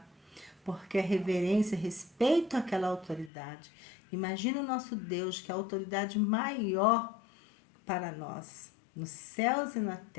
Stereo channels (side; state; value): right; drops out; at 3.3 s